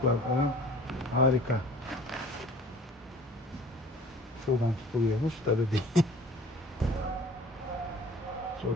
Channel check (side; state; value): both; normal; correlation 0.47